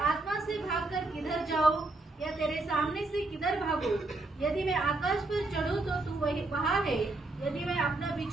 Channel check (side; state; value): left; quieter; 3.1 dB